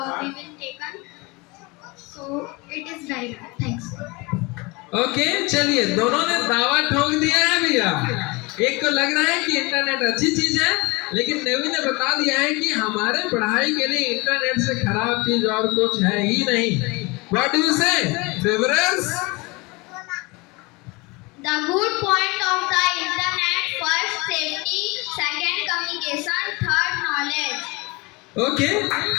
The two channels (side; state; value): right; quieter; 25.6 dB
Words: taken. So it is very bad. Thanks. Okay चलिए, दोनों ने दावा ठोक दिया है भैया. एक को लग रहा है कि इंटरनेट अच्छी चीज है, लेकिन नेवी ने बता दिया है कि हमारे पढ़ाई के लिए इंटरनेट से खराब चीज और कुछ है ही नहीं. व्हाट डू यू से फेवरर्स? The good point of the internet: first, safety; second, communication; third, knowledge. Okay